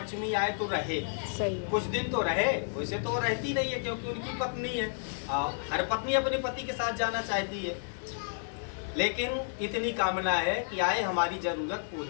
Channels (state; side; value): silent; right; digital silence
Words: आए तो रहे, सही है। कुछ दिन तो रहे, वैसे तो रहती नहीं है क्योंकि उनकी पत्नी है, हर पत्नी अपने पति के साथ जाना चाहती है, लेकिन इतनी कामना है कि आए हमारी जरूरत